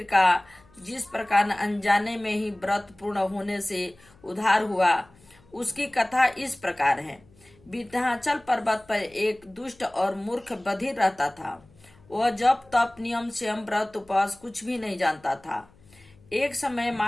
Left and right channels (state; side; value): noise; left; hum, 28 dB below the sound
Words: का जिस प्रकार अनजाने में ही व्रत पूर्ण होने से उद्धार हुआ, उसकी कथा इस प्रकार है। विंध्याचल पर्वत पर एक दुष्ट और मूर्ख बधिर रहता था। वह जप तप नियम स्वयं व्रत उपवास कुछ भी नहीं जानता था। एक समय